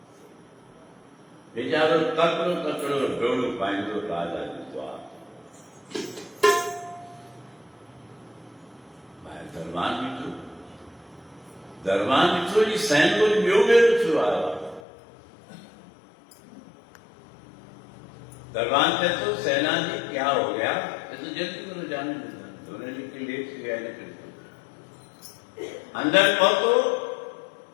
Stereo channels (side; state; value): right; drops out; at 14.8 s